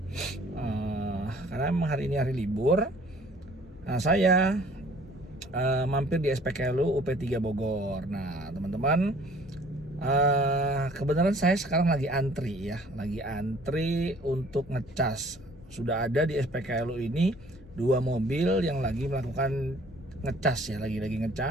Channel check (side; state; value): both; normal; correlation 0.55